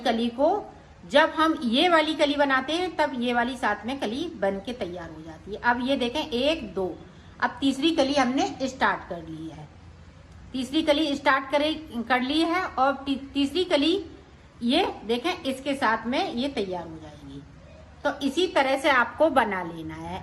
को जब हम ये वाली कली बनाते हैं तब ये वाली साथ में कली बन के तैयार हो जाती है। अब ये देखें 1 2, अब तीसरी कली हमने स्टार्ट कर ली है। तीसरी कली स्टार्ट कर ली है और तीसरी कली ये देखें इसके साथ में ये तैयार हो जाएगी। तो इसी तरह से आपको बना लेना है।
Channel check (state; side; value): identical; both; correlation 1.00